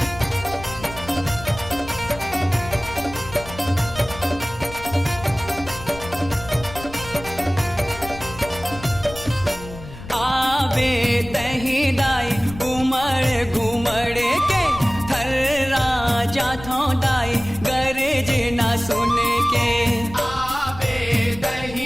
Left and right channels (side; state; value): left; noise; rumble, 14 dB below the sound